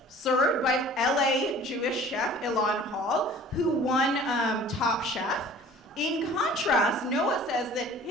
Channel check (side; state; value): both; normal; correlation 0.47